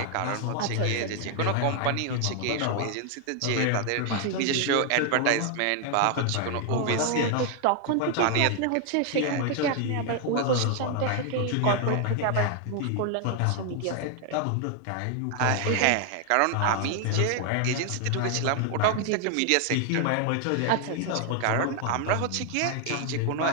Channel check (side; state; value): both; different; correlation 0.00